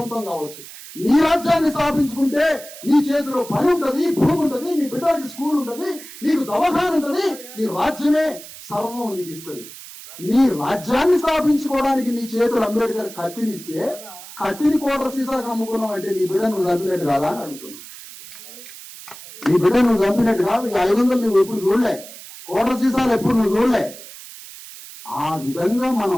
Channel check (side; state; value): right; noise; hiss, 15 dB below the sound